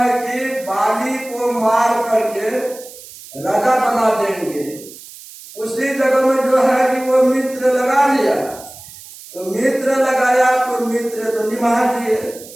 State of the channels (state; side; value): noise; right; hiss, 17 dB below the sound